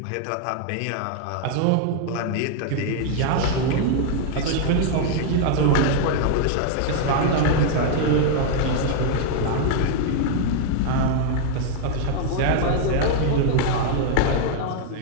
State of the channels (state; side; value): different; both; correlation 0.00